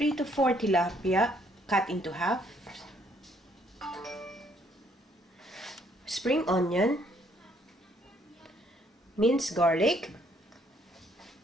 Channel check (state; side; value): normal; both; correlation 0.67